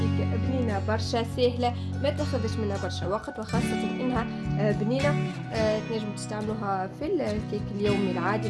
بنينه برشا سهله، ما تاخذش منها برشا وقت، وخاصه انها بنينه. تنجموا تستعملوها في الكيك اليومي العادي،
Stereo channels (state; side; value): identical; both; correlation 1.00